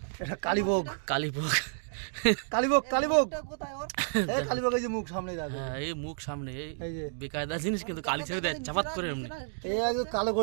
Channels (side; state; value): left; silent; digital silence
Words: এটা কালীভোগ কালীভোগ। ওটা কোথায় ওর? এই কালীভোগ, এই যে মুখ সামনে দেখো, হ্যাঁ, এই মুখ সামনে, এই এই যে বেকায়দা জিনিস, কিন্তু কালি ছেড়ে দেয় চাপাত করে এমনি। এই একদম কালো